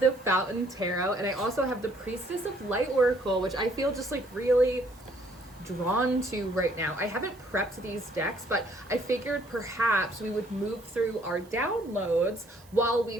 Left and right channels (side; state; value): right; noise; hiss, 27 dB below the sound